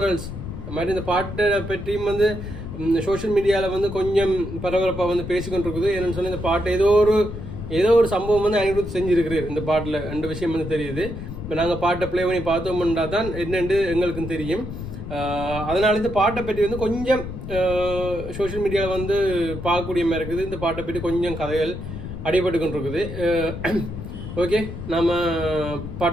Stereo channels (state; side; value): noise; left; rumble, 9 dB below the sound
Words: மாதிரி இந்த பாட்டை பற்றியும் வந்து சோஷியல் மீடியாவில் வந்து கொஞ்சம் பரபரப்பாக வந்து பேசிக்கொண்டு இருக்குது. ஏன்னு சொன்னால் இந்த பாட்டு ஏதோ ஒரு சம்பவம் வந்து அனிருத் செஞ்சுருக்கிறார் இந்த பாட்டில். ரெண்டு விஷயம் வந்து தெரியுது. இப்போ நாங்கள் பாட்டை ப்ளே பண்ணி பார்த்தோம்னா தான் என்னென்று எங்களுக்கும் தெரியும். அதனால இந்த பாட்டை பற்றி வந்து கொஞ்சம் சோஷியல் மீடியாவில் வந்து பார்க்கக்கூடிய மாதிரி இருக்குது. இந்த பாட்டை பற்றி கொஞ்சம் கதைகள் அடிபட்டு கொண்டு இருக்குது. ஓகே, நம்ம